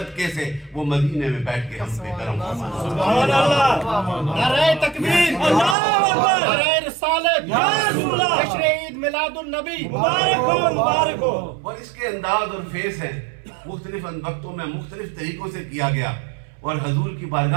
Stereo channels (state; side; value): drops out; left; at 5.8 s